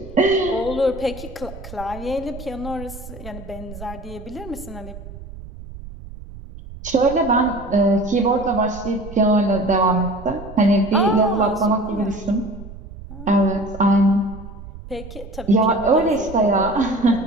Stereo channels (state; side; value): noise; right; rumble, 14 dB below the sound